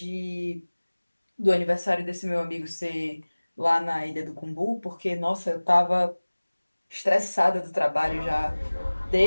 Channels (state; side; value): inverted; both; correlation -1.00